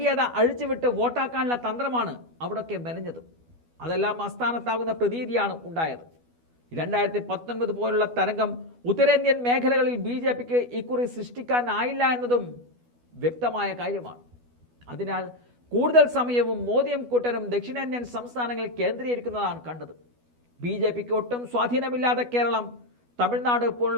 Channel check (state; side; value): late; left; 12 ms